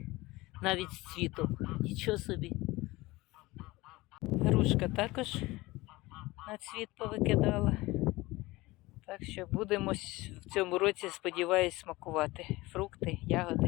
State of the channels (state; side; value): quieter; right; 20.5 dB